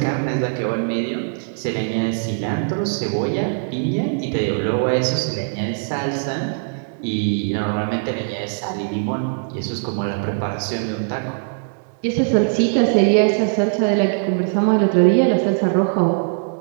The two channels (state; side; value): silent; left; 65 dB below the other